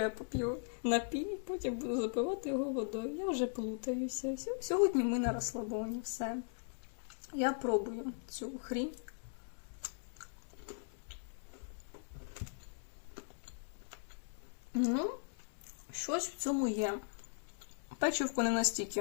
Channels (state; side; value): silent; right; digital silence